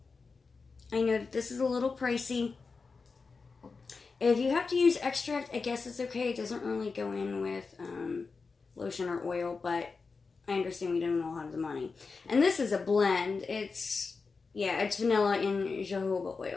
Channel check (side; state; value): right; quieter; 4.5 dB